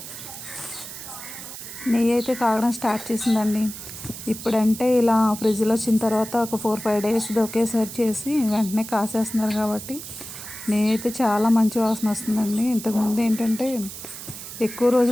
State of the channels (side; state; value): right; noise; hiss, 11 dB below the sound